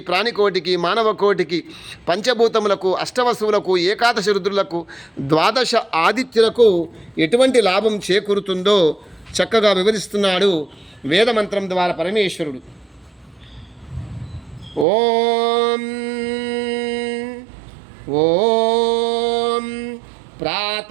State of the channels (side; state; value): left; drops out; at 14.9 s